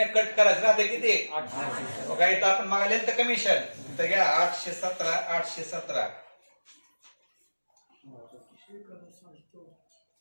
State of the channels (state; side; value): inverted; both; correlation -1.00